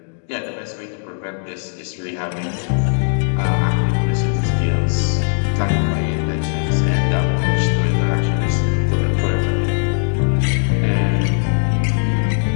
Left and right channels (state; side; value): silent; right; 62 dB below the other